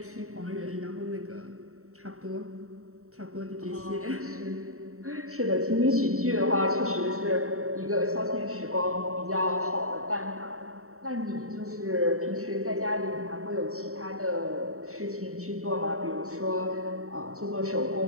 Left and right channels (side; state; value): left; late; 0.64 ms